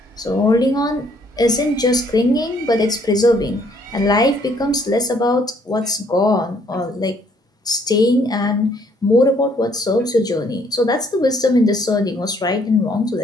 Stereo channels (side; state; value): both; normal; correlation 0.65